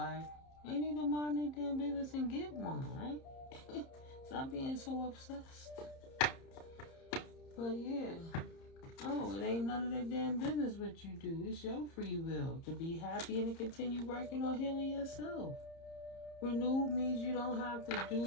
They need to mind their damn business and get one, right? Stop being so obsessed. But yeah. Oh, it ain't none of their damn business what you do. It's your free will to be happy and to continue working on healing yourself. Renewed means you don't have to do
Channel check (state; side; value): late; right; 30 ms